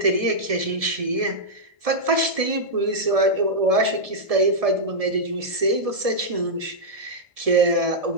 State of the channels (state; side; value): late; left; 1.7 ms